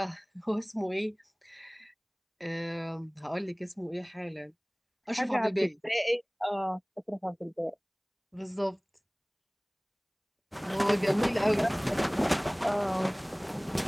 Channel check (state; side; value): identical; both; correlation 1.00